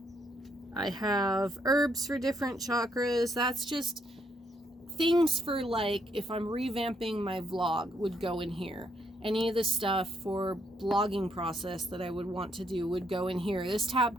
have herbs for different chakras. That's just things for like if I'm revamping my vlog would go in here. Any of the stuff for blogging process that I would want to do would go in here. This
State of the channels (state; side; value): normal; both; correlation 0.74